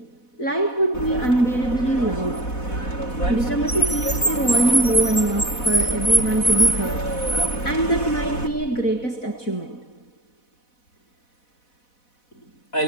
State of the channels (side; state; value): right; late; 4.1 ms